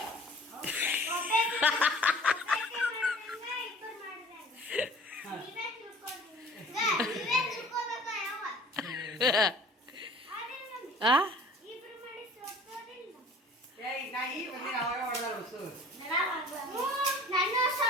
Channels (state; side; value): normal; both; correlation 0.47